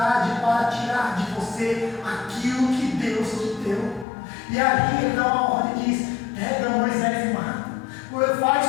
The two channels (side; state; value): right; drops out; at 4.0 s